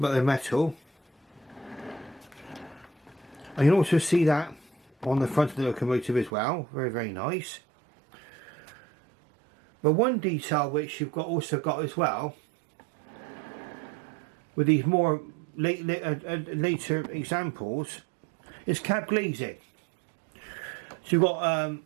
they're metal. And you can also see that on the front of the locomotive as well, very, very nice. But one detail which you've also got as well, with these more later examples, is cab glazing. So you've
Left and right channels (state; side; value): drops out; left; at 6.3 s